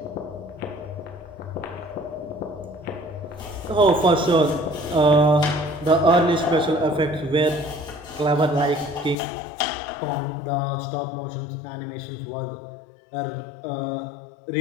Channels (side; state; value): right; drops out; at 9.2 s